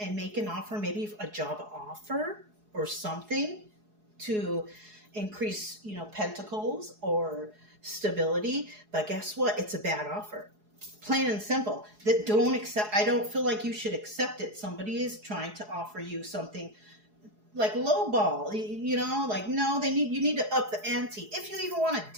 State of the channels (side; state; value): left; late; 4.7 ms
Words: make an offer, maybe a job offer or something to increase, you know, pentacles or stability. But guess what? It's a bad offer. Plain and simple. That don't accept. I don't feel like you should accept it. Somebody is trying to offer you something like lowball, you know, like, no, you need to up the ante if you even want to